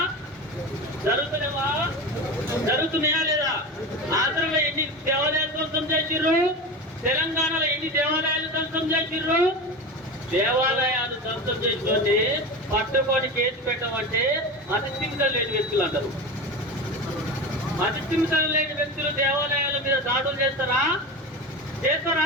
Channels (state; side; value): normal; both; correlation 0.26